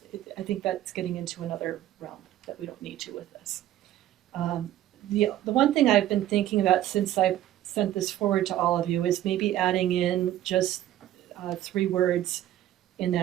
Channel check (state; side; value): quieter; left; 13.0 dB